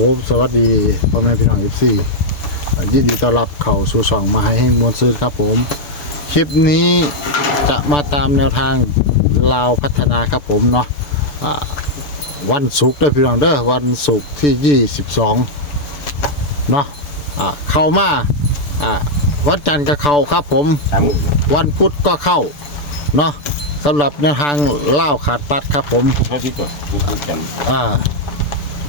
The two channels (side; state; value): right; late; 6.8 ms